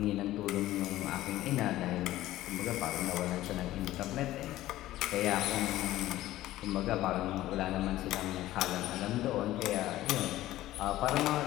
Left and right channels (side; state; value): right; quieter; 15.3 dB